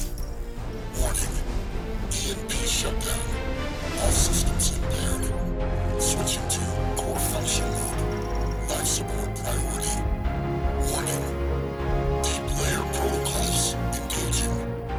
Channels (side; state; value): both; identical; correlation 1.00